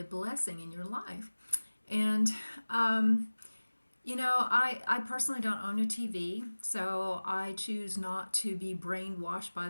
blessing in your life. And I personally don't own a TV, so I choose not to be brainwashed by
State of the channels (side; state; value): both; inverted; correlation -1.00